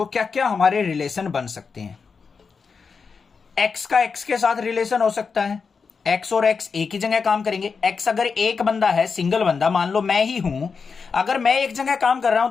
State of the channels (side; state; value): right; quieter; 5.3 dB